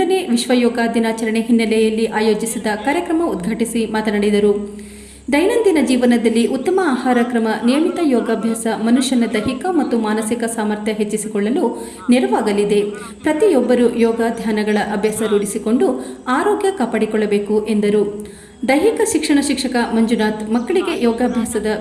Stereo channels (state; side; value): identical; both; correlation 1.00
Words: ವಿಶ್ವ ಯೋಗ ದಿನಾಚರಣೆ ಹಿನ್ನೆಲೆಯಲ್ಲಿ ಆಯೋಜಿಸಿದ ಕಾರ್ಯಕ್ರಮ ಉದ್ಘಾಟಿಸಿ ಮಾತನಾಡಿದರು. ದೈನಂದಿನ ಜೀವನದಲ್ಲಿ ಉತ್ತಮ ಆಹಾರ ಕ್ರಮ, ನಿಯಮಿತ ಯೋಗಾಭ್ಯಾಸ ಮನುಷ್ಯನ ದೈಹಿಕ ಮತ್ತು ಮಾನಸಿಕ ಸಾಮರ್ಥ್ಯ ಹೆಚ್ಚಿಸಿಕೊಳ್ಳಲು ನೆರವಾಗಲಿದೆ. ಪ್ರತಿಯೊಬ್ಬರೂ ಯೋಗ ಧ್ಯಾನಗಳ ಅಭ್ಯಾಸ ರೂಢಿಸಿಕೊಂಡು ಆರೋಗ್ಯ ಕಾಪಾಡಿಕೊಳ್ಳಬೇಕು ಎಂದರು. ದೈಹಿಕ ಶಿಕ್ಷಣ ಶಿಕ್ಷಕ ಮಂಜುನಾಥ್ ಮಕ್ಕಳಿಗೆ ಯೋಗಾಭ್ಯಾಸದ